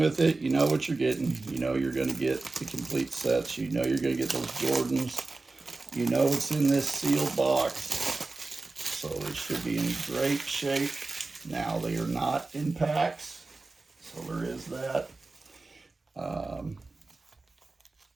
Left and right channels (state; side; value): quieter; left; 3.5 dB